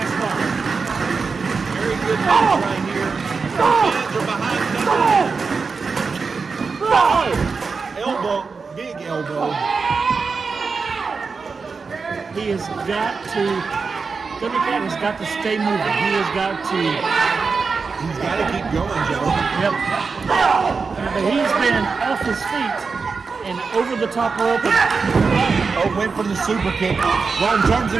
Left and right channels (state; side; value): quieter; left; 4.8 dB